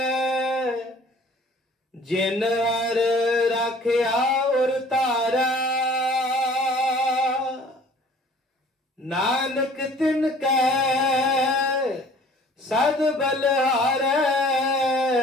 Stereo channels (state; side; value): normal; both; correlation 0.51